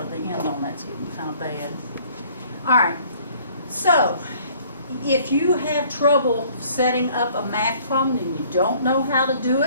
The end on that's getting kind of bad. All right, so if you have trouble setting up a math problem and you don't know how to do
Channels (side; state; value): both; inverted; correlation -0.56